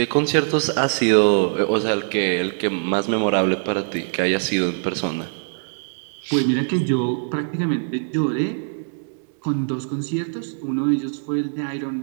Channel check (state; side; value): silent; left; 64 dB below the other